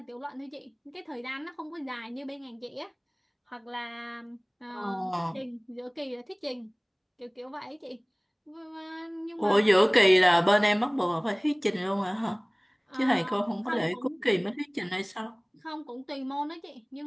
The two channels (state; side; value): identical; both; correlation 1.00